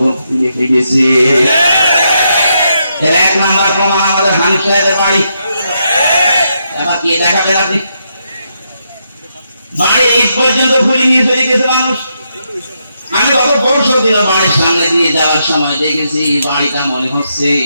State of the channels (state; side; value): inverted; both; correlation -0.80